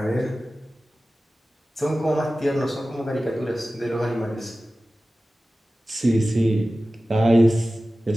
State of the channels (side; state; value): both; normal; correlation 0.96